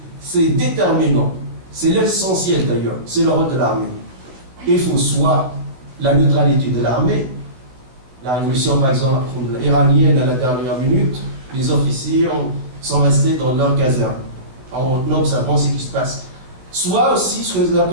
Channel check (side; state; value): left; late; 16 ms